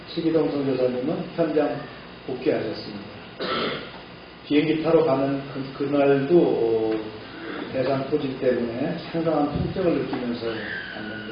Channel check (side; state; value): both; identical; correlation 1.00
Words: 최기동 선교사님은 현장 복귀하셨습니다. 비행기 타러 가는 그날도 대상 토질 때문에 상당한 통증을 느끼면서